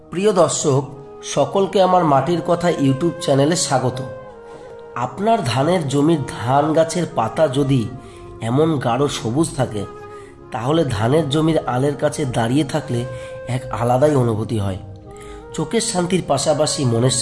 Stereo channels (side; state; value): both; identical; correlation 1.00